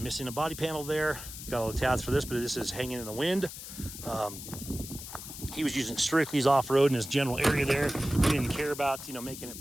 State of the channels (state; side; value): noise; left; hiss, 11 dB below the sound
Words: missing a body panel there. Got all the tabs for this, but this is hanging in the wind. He was using strictly his off-road in his general area there. He didn't care about, making it